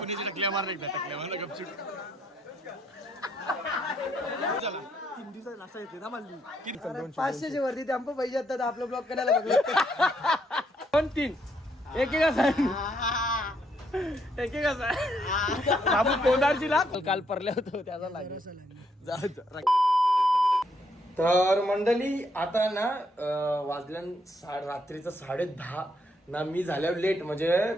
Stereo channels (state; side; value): normal; both; correlation 0.73